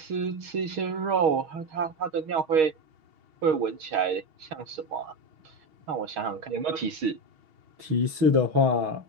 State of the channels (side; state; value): left; late; 6.3 ms